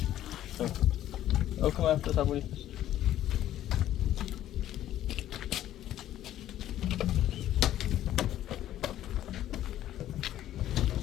Ook kom even, dat hebben we niet.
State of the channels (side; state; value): right; quieter; 12.5 dB